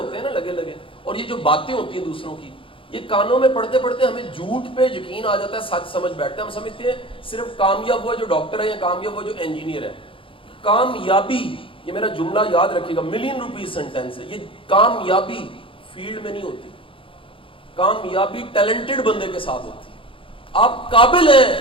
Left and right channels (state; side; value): late; right; 0.25 ms